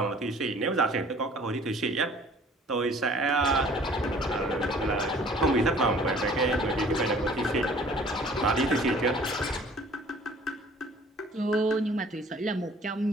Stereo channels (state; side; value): normal; both; correlation 0.52